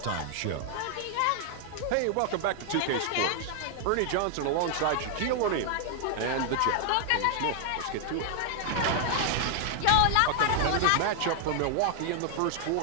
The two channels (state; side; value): different; both; correlation 0.00